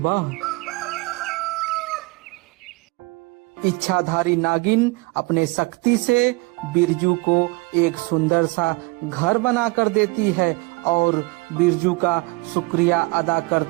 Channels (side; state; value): left; quieter; 25.9 dB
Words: इच्छाधारी नागिन अपने शक्ति से बिरजू को एक सुंदर सा घर बना कर देती है और बिरजू का शुक्रिया अदा